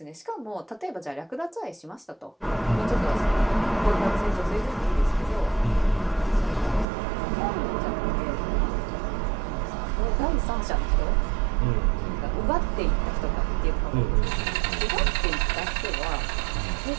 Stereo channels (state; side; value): drops out; left; at 6.9 s